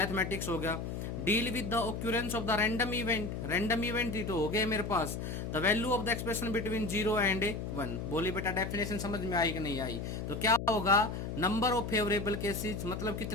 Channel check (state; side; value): noise; left; hum, 5 dB below the sound